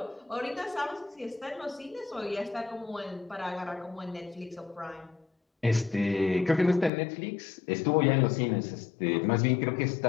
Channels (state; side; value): drops out; right; at 6.9 s